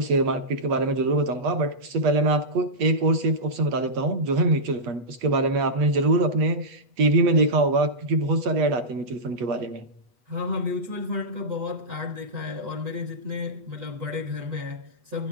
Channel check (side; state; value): left; late; 8.2 ms